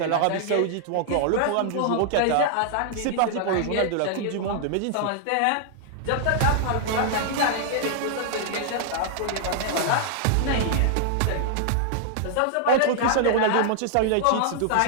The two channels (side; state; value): both; different; correlation -0.01